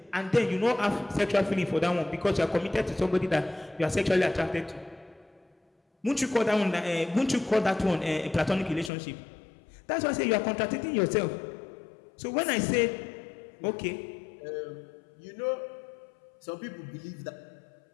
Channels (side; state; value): right; drops out; at 8.9 s